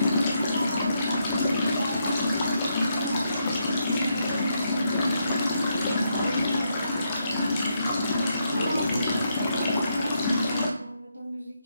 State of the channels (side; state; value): both; inverted; correlation -0.79